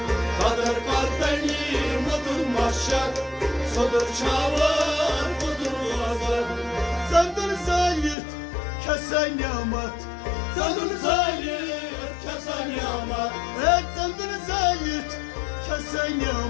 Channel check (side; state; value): right; drops out; at 8.2 s